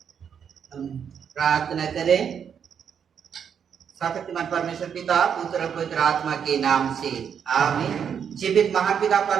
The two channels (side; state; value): left; quieter; 7.7 dB